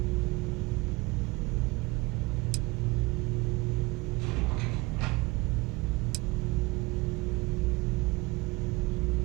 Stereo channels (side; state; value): left; quieter; 23.6 dB